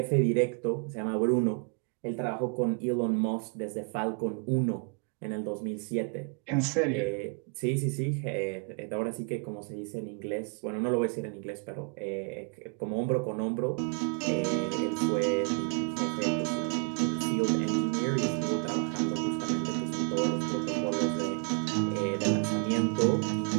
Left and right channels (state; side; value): quieter; left; 36.4 dB